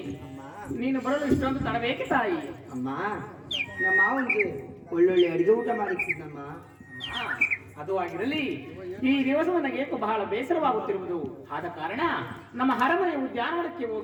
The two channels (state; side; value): identical; both; correlation 1.00